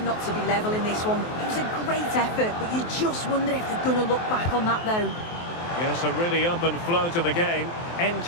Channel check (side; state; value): right; late; 23 ms